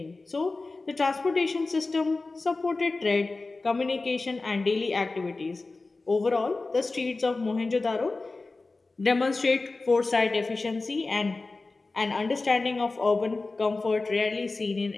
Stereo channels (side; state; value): right; quieter; 3.5 dB